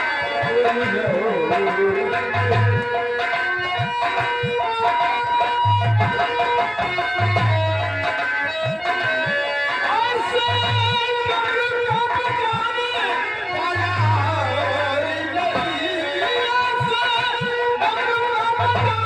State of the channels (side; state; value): both; identical; correlation 1.00